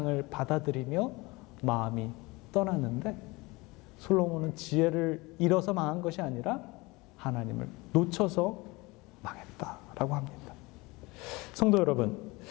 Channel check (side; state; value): right; quieter; 23.5 dB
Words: 받아들이며 마음이 떠났는데 솔로몬은 지혜를 잃어서 망한 것이 아니라 하나님을 놓쳐서 망했다라고 합니다. 성도 여러분,